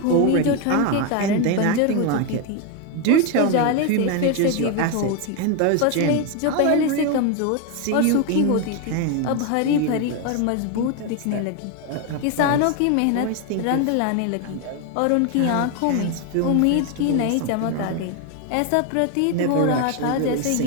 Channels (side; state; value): both; different; correlation 0.02